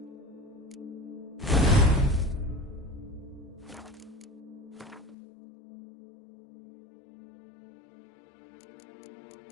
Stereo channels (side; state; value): right; drops out; at 5.2 s